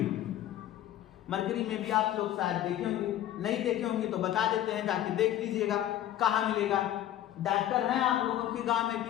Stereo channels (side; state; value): right; quieter; 12.5 dB